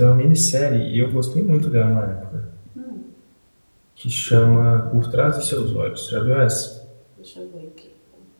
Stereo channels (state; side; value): inverted; both; correlation -1.00